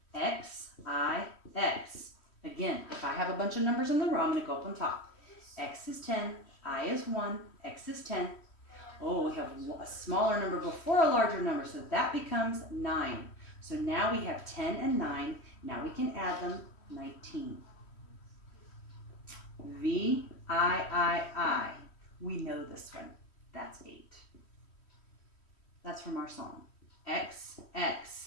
X, I, X. Again, if I have a bunch of numbers in the row, I'm going to go up on top. X is 10, I is 1, X is 10. Oh, we have a smaller number before a larger number, so that becomes 9. So now we have 10 and 9. Now we can add them, 19. V, I. We know this one. That's 8. That's from our song. X,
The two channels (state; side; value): late; right; 3.1 ms